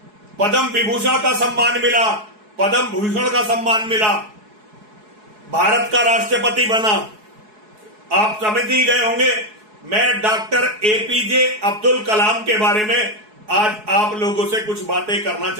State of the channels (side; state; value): left; late; 4.7 ms